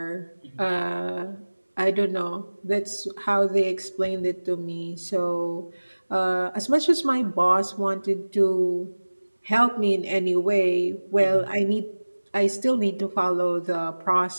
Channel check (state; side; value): inverted; both; correlation -1.00